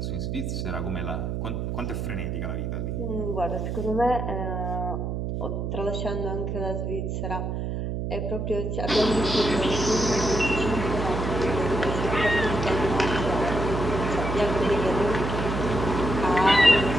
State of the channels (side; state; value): right; noise; hum, 2 dB below the sound